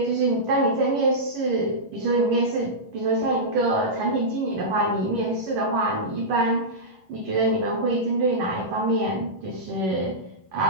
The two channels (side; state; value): left; late; 11 ms